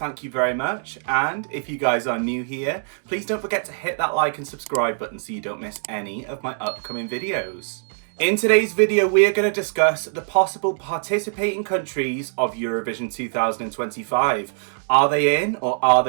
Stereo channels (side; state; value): left; silent; digital silence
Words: you very much. And if you guys are new here, please don't forget to hit that like and subscribe button so you don't miss any of my upcoming videos. In today's video, we are going to discuss the possible participating countries of Eurovision 2025. Are they in or are